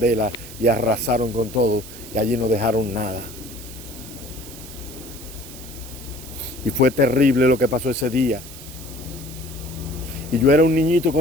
y arrasaron con todo y allí no dejaron nada. Y fue terrible lo que pasó ese día. Y yo era un niñito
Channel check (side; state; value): right; noise; hiss, 15 dB below the sound